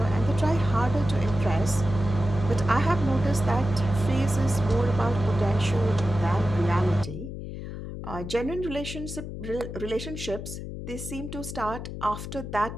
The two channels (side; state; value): left; noise; hum, 8 dB below the sound